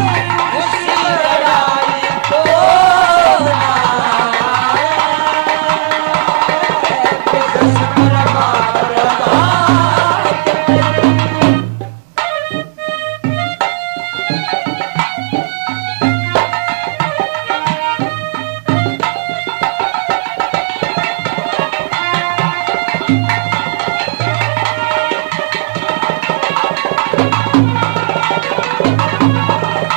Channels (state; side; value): silent; left; digital silence